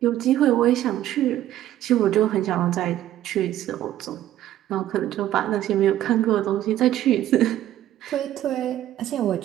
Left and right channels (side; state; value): left; quieter; 12.8 dB